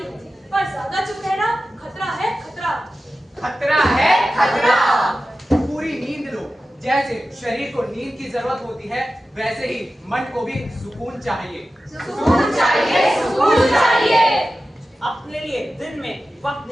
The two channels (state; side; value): normal; both; correlation 0.94